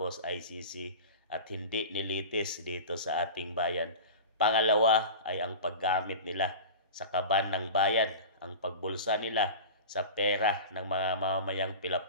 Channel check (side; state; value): both; inverted; correlation -0.33